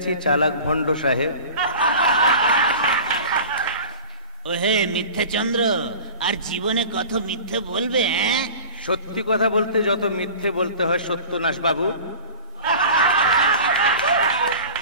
চালাক ভণ্ড সাহেব। ওহে মিথ্যে চন্দ্র, আর জীবনে কত মিথ্যে বলবে? সত্যি কথা বলতে যত মিথ্যে বলতে হয় সত্যনাশ বাবু।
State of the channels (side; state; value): both; inverted; correlation -0.38